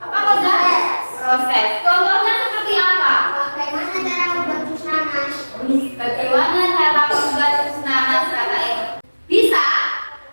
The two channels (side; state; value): both; inverted; correlation -1.00